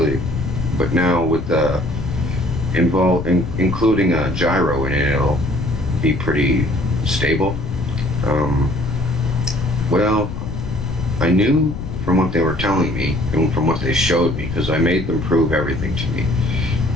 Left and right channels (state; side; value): noise; left; rumble, 7 dB below the sound